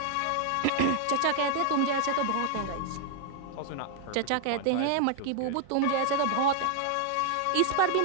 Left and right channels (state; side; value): different; both; correlation 0.00